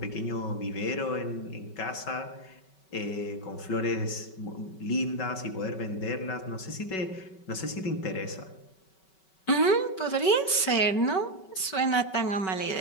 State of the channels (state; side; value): late; right; 5.3 ms